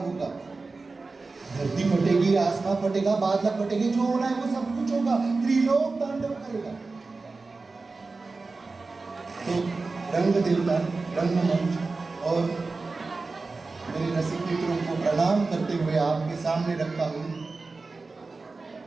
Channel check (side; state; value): left; quieter; 3.8 dB